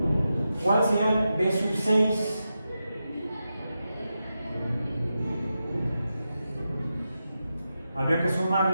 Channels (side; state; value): both; inverted; correlation -0.89